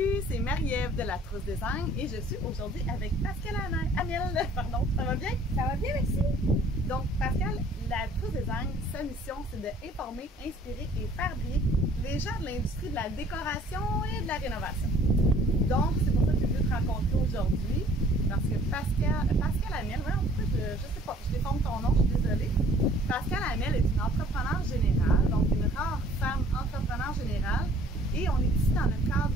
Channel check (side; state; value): both; normal; correlation 0.55